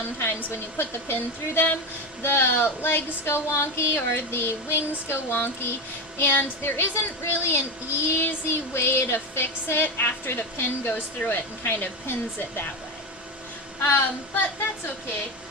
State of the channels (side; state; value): both; normal; correlation 0.16